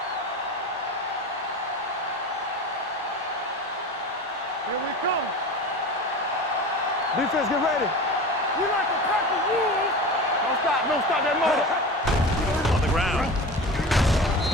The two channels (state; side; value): normal; both; correlation 0.32